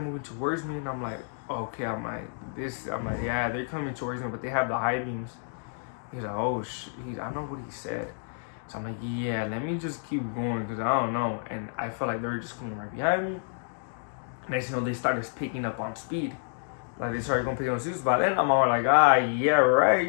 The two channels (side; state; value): right; silent; digital silence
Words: moving towards me, and I'm like, okay, I'm like, yeah, they're coming towards me, but they have the high beams. He's like, oh, I know what he said. So I'm like, yeah, let me just keep going, because I don't know. And I felt like they were just coming right behind me. Next thing you know, they started picking up on speed. Like, they started going picking up on speed. By then, I'm all like, yeah, right,